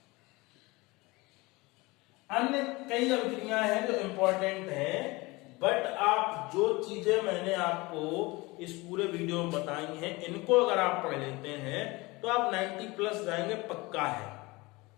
अन्य कई अभिक्रियाएं हैं जो इंपॉर्टेंट हैं। बट आप जो चीजें मैंने आपको इस पूरे वीडियो में बताई हैं, इनको अगर आप पढ़ लेते हैं तो आप 90+ जाएंगे, पक्का है,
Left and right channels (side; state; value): right; quieter; 23.1 dB